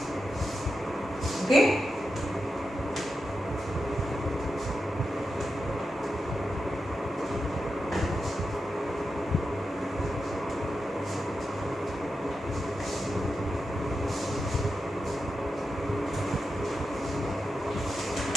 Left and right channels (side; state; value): both; normal; correlation 0.89